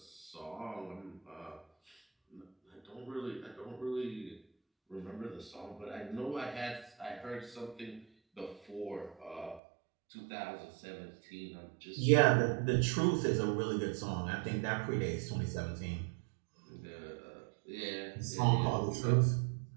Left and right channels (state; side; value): drops out; left; at 9.6 s